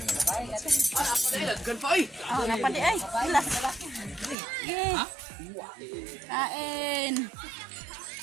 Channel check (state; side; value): drops out; left; at 4.4 s